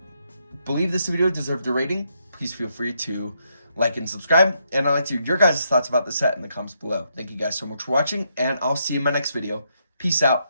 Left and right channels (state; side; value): inverted; both; correlation -0.78